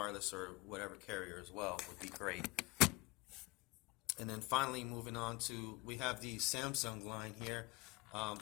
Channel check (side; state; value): right; quieter; 24.2 dB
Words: or whatever carrier as well would be great. And then finally, moving on to, we have the Samsung line here. I